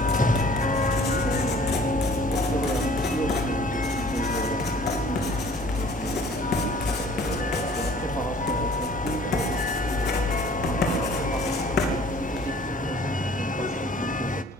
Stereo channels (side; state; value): both; normal; correlation 0.52